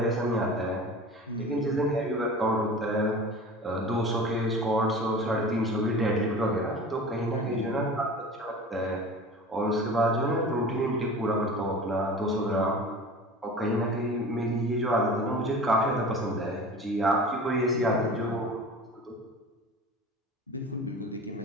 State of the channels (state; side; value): normal; both; correlation 0.38